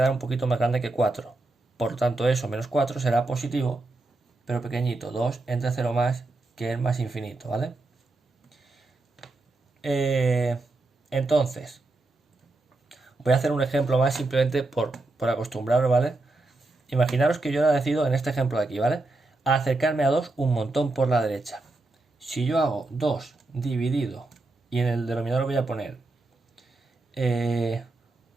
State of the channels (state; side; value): quieter; left; 3.1 dB